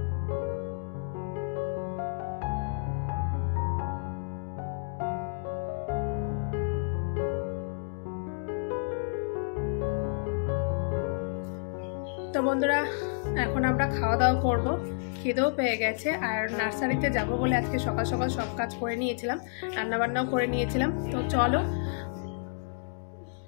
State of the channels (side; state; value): right; silent; digital silence